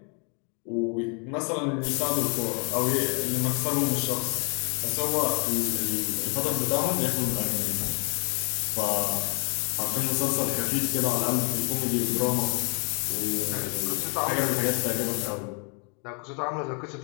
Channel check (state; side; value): quieter; right; 37.9 dB